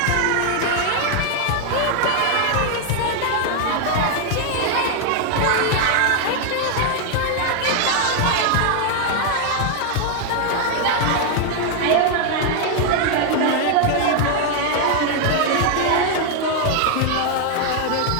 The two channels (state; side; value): different; both; correlation 0.00